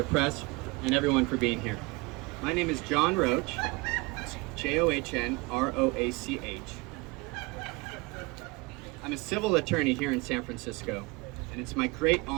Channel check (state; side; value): quieter; left; 25.4 dB